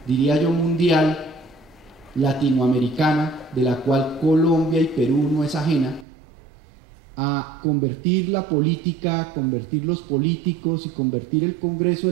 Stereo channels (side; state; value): left; drops out; at 6.1 s